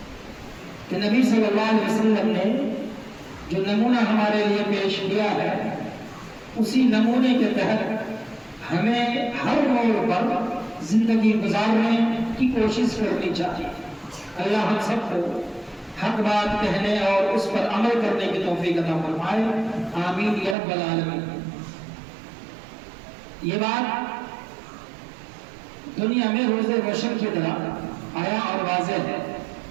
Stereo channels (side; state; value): left; drops out; at 20.6 s